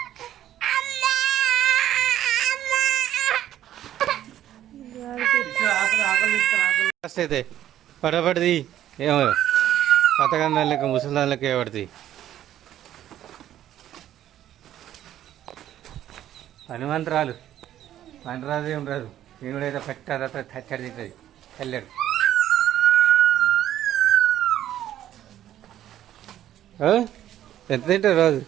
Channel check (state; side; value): quieter; left; 12.0 dB